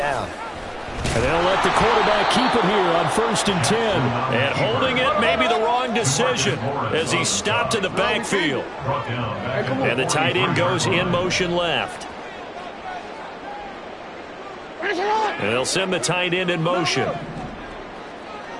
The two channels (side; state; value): both; identical; correlation 1.00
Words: And they'll let the quarterback keep it here on 1st and 10. And holding it may be the wrong decision as he stopped in the backfield. And the tight end goes in motion left. And they'll send the tight end in motion.